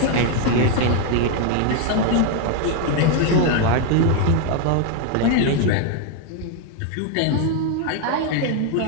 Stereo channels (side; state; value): both; different; correlation 0.01